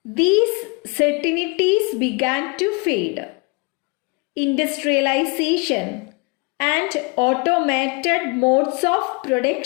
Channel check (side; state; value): right; quieter; 30.3 dB